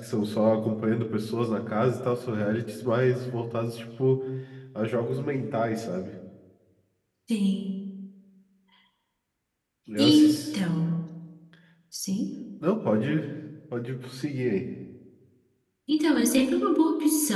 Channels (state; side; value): identical; both; correlation 1.00